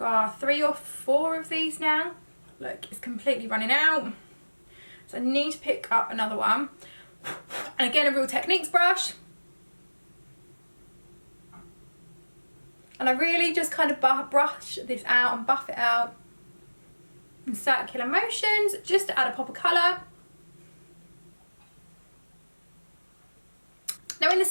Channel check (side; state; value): both; inverted; correlation -1.00